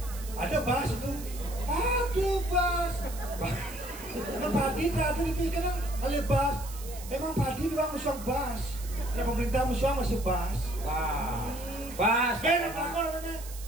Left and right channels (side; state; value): right; noise; hiss, 14 dB below the sound